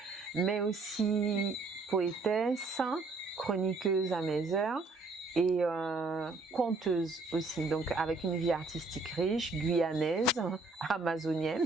mais aussi poétesse, chroniqueuse à mes heures et conteuse aussi, donc avec une vie artistique riche, guyanaise,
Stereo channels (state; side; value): quieter; left; 3.6 dB